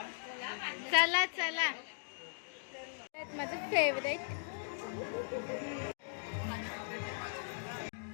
चला चला. माझं फेवरेट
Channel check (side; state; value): right; silent; digital silence